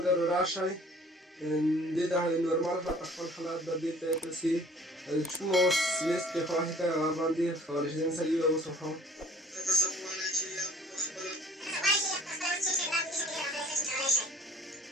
راشئ دې ته نورمال خپل حالات به دې ته تاسې کومه اوس لیست کې خوښې کړئ هغه باندې کولی شئ. مثلا یو اوس وښیم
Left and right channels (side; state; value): both; normal; correlation 0.52